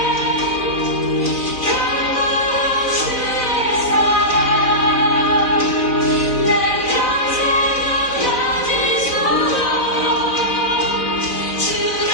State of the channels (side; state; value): right; late; 4.0 ms